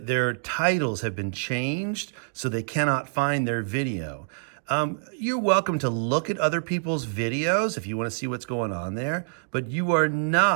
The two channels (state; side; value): silent; left; digital silence